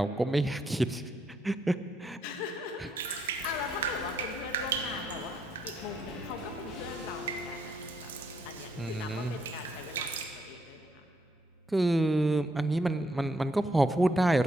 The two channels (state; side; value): normal; both; correlation 0.74